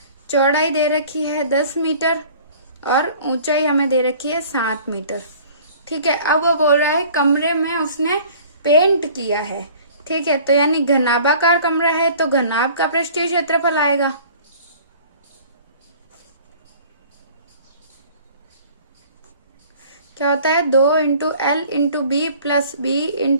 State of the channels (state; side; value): inverted; both; correlation -0.49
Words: चौड़ाई दे रखी है 10 मीटर और ऊंचाई हमें दे रखी है 7 मीटर। ठीक है, अब वो बोल रहा है कमरे में उसने पेंट किया है। ठीक है, तो यानी घनाभाकार कमरा है तो घनाभ का पृष्ठीय क्षेत्रफल आएगा। क्या होता है, 2 into L into B plus B